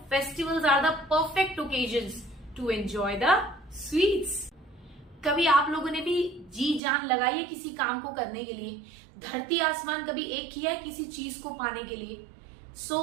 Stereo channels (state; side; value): drops out; left; at 6.8 s